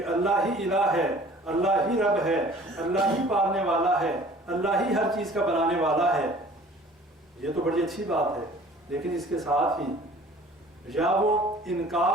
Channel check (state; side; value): normal; both; correlation 0.49